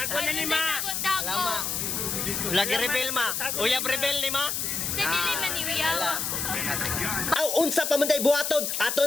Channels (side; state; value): left; noise; hiss, 1 dB below the sound